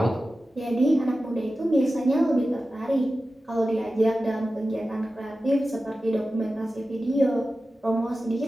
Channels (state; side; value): normal; both; correlation 0.94